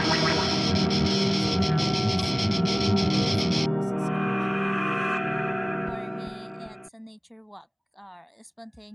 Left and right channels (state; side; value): identical; both; correlation 1.00